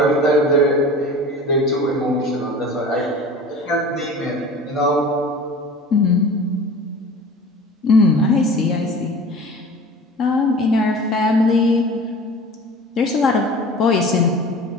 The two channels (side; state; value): both; normal; correlation 0.40